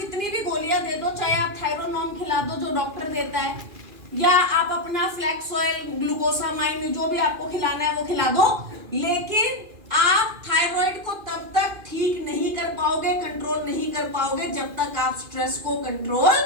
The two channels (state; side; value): late; left; 2.4 ms